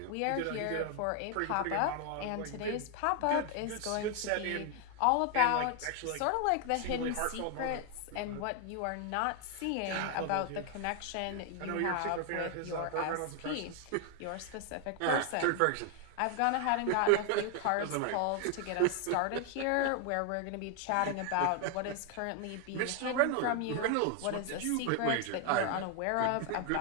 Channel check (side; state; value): both; different; correlation 0.00